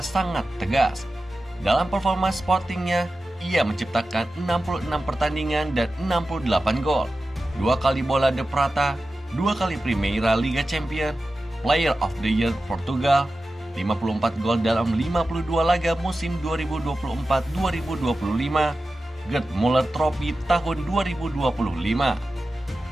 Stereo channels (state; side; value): normal; both; correlation 0.94